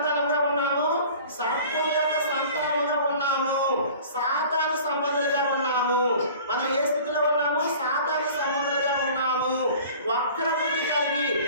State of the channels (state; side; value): inverted; both; correlation -0.45